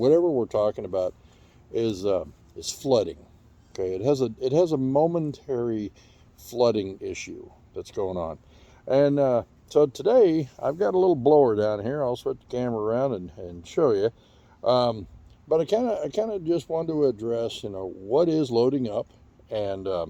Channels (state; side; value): identical; both; correlation 1.00